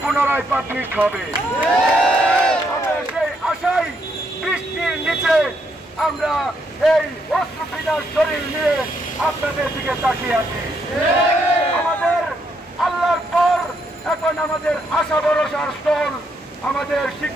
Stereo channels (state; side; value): normal; both; correlation 0.75